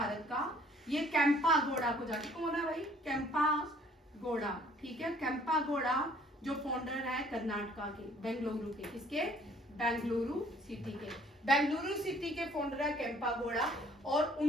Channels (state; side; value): normal; both; correlation 0.59